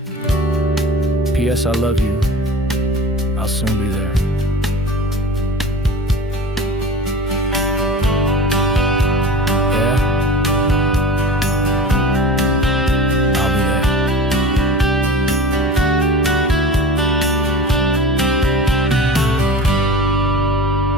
P.S. I love you. I'll soon be there. Yeah? I'll be there.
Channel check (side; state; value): both; normal; correlation 0.37